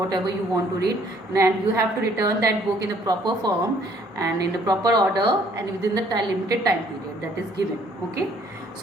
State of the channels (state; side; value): normal; both; correlation 0.62